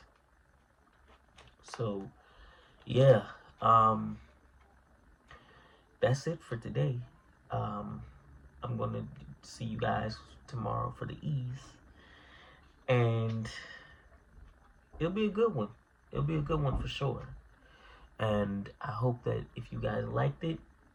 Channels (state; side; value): identical; both; correlation 1.00